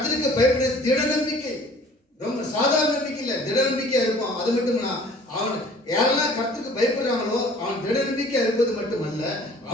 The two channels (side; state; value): both; normal; correlation 0.51